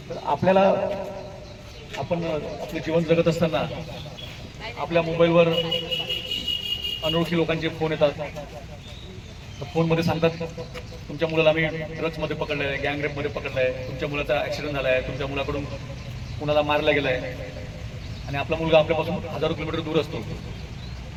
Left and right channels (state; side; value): identical; both; correlation 1.00